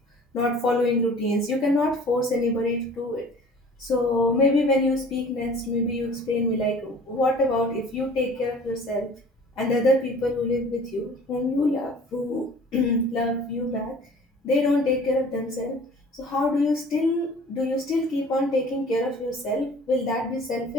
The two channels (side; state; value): both; normal; correlation 0.48